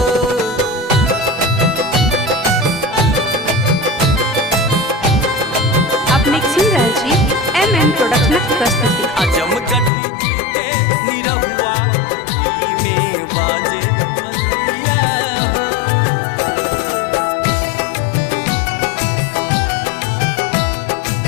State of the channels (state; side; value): drops out; right; at 9.9 s